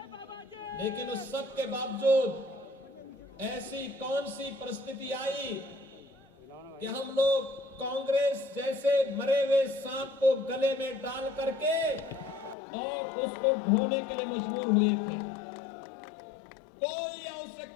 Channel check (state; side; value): drops out; right; at 12.6 s